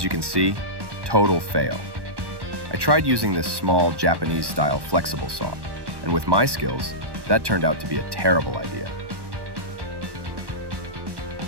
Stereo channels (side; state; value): left; late; 1.1 ms